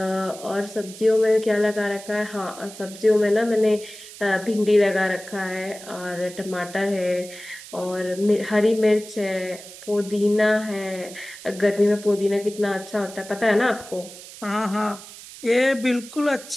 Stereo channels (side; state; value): right; noise; hiss, 16 dB below the sound